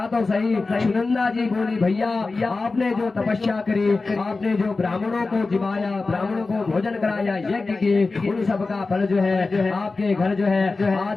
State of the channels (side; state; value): right; quieter; 3.7 dB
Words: तो सही। सुनंदा जी बोली भैया आपने जो तपस्या करी, आपने जो ब्राह्मणों को जिमाया, ब्राह्मणों को भोजन कराया, यज्ञ किए, उन सब का फल जो है आपके घर जो है